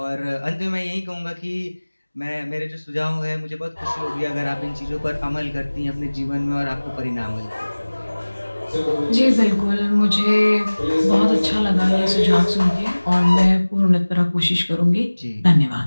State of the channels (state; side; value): inverted; both; correlation -1.00